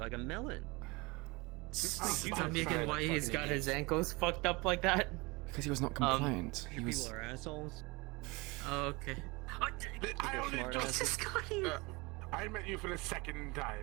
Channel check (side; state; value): left; quieter; 25.5 dB